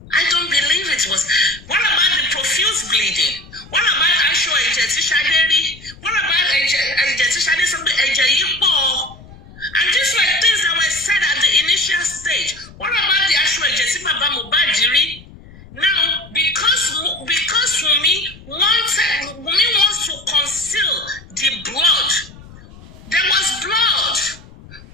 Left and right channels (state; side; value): noise; left; rumble, 20 dB below the sound